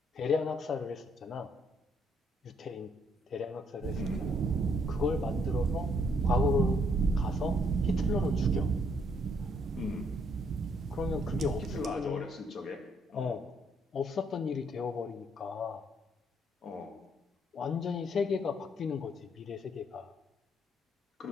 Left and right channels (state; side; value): normal; both; correlation 0.70